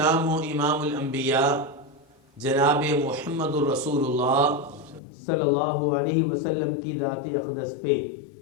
ہو امام الانبیاء جناب محمد الرسول اللہ صلی اللہ علیہ وسلم کی ذات اقدس پہ،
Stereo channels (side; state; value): right; drops out; at 5.0 s